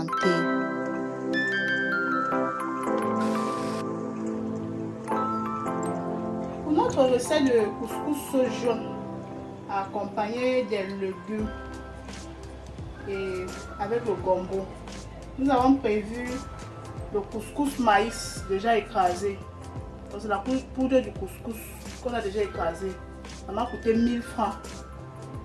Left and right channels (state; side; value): identical; both; correlation 1.00